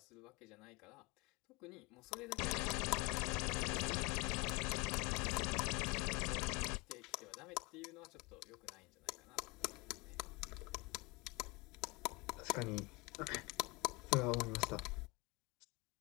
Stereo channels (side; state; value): right; quieter; 25.6 dB